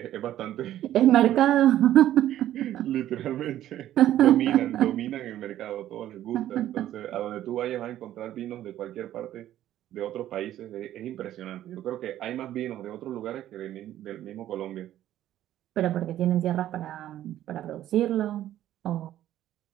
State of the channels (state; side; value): quieter; left; 12.6 dB